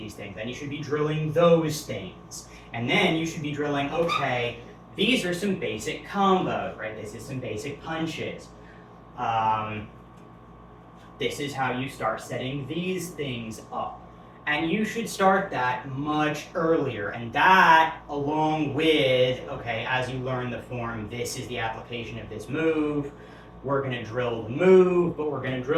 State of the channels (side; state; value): both; identical; correlation 1.00